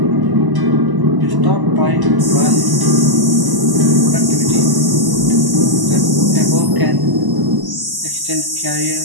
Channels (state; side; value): late; left; 1.0 ms